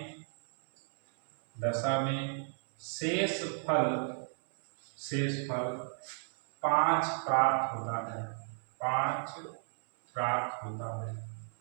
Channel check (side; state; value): left; silent; 56 dB below the other